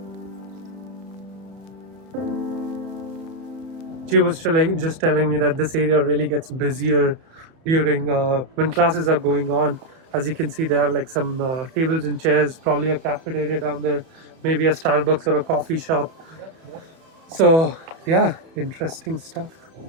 She was just telling me that this area really gets busier during when classes are going on. As you can see, they have like some tables and chairs, probably a cafeteria down there, maybe a Starbucks or a coffee shop. So yeah, interesting stuff.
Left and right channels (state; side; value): late; left; 31 ms